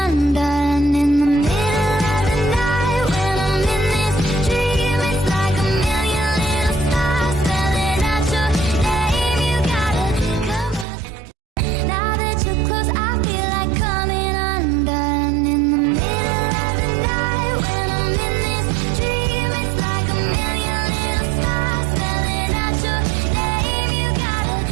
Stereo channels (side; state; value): left; drops out; at 10.9 s